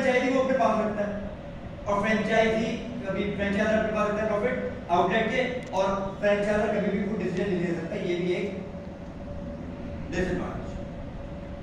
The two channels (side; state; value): both; identical; correlation 1.00